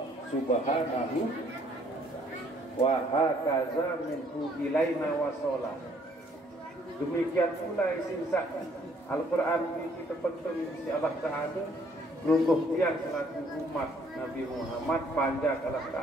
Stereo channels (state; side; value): normal; both; correlation 0.64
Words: subhanahu wa hakaza minhu ilaina wasola. Demikian pula isi zat Al-Quran ini terpenting isi Allah Ta'ala lungguh tiang selaku umat Nabi Muhammad panjang Allah